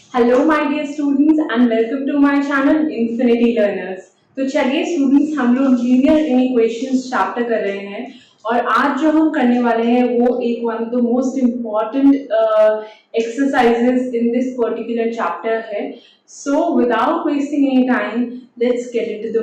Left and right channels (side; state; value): both; identical; correlation 1.00